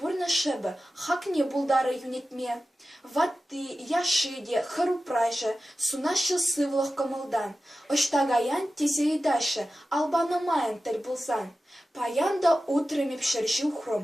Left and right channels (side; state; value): both; normal; correlation 0.94